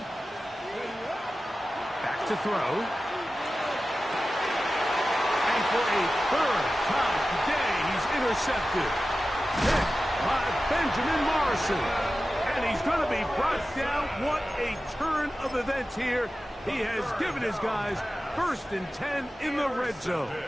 Back to throw. And for a 3rd time today, he's intercepted. Hit by Benjamin Morrison. And he's going to be brought down. What a turn of events here. He has given his guys 1st and 10 in the red zone.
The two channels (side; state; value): both; normal; correlation 0.94